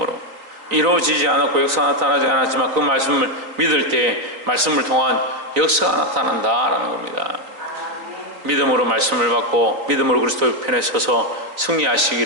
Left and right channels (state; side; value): late; left; 3.9 ms